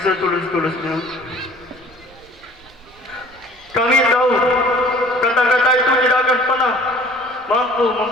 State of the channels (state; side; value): noise; right; rumble, 27 dB below the sound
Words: setulus-tulusnya. Kami tahu kata-kata itu tidak akan pernah mampu